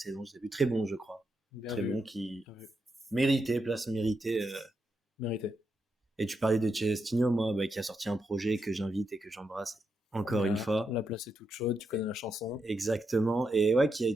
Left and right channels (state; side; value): normal; both; correlation 0.84